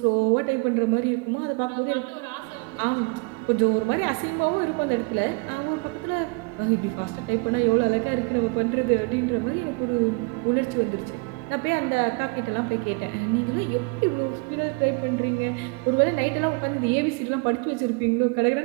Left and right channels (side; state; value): left; quieter; 30.4 dB